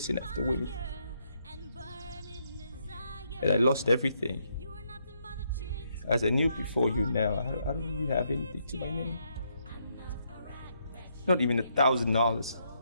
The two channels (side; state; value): both; inverted; correlation -0.76